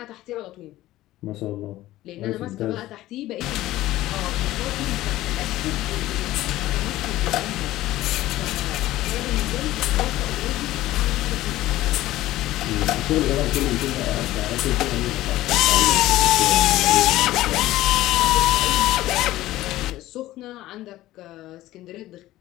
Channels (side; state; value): right; quieter; 15.9 dB